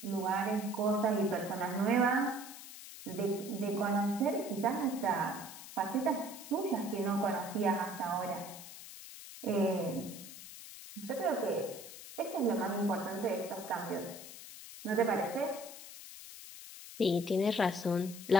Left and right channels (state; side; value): noise; left; hiss, 13 dB below the sound